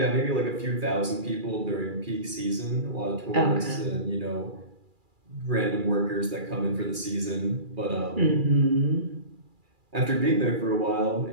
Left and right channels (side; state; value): left; late; 2.4 ms